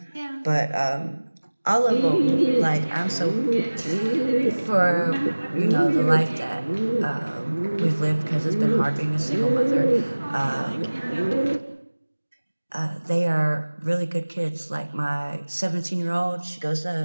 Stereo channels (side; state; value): both; inverted; correlation -1.00